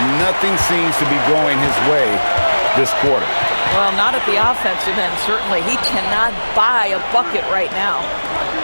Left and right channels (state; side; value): inverted; both; correlation -1.00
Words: Nothing seems to be going his way this quarter. Well, not at the offensive end, certainly. He cannot buy a bucket right now.